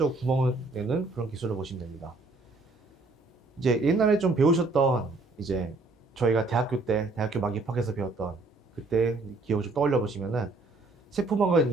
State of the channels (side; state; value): left; quieter; 3.3 dB